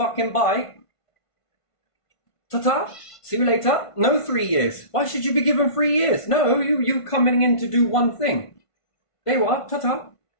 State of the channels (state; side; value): late; right; 1.5 ms